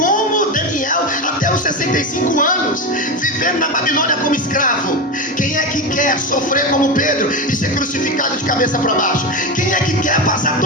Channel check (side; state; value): both; normal; correlation 0.17